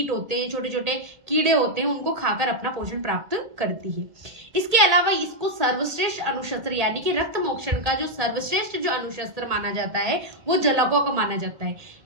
होते हैं, छोटे छोटे कीड़े होते हैं, उनको खाकर अपना पोषण प्राप्त करती है। इसके अलावा इसको सर्वश्रेष्ठ अणुशस्त्र यानी कि रक्त मोक्षण का जो सर्वश्रेष्ठ जो अणुशस्त्र माना जाता है वो जलौका को माना जाता है।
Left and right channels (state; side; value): late; left; 1.8 ms